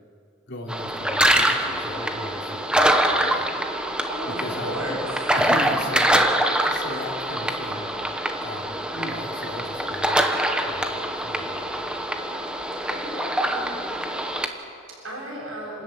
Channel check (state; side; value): normal; both; correlation 0.62